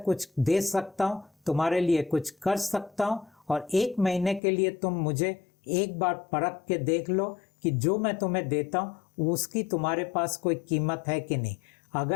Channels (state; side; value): drops out; right; at 4.4 s